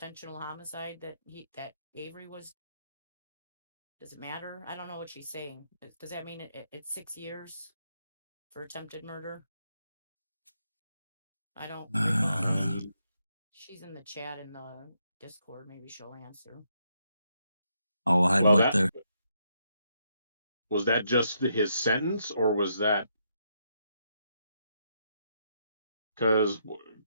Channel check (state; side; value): inverted; both; correlation -0.78